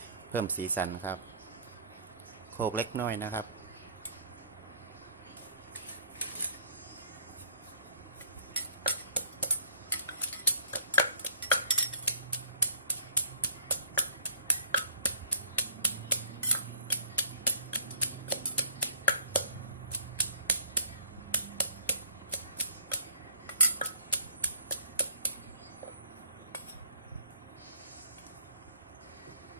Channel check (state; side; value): inverted; both; correlation -0.53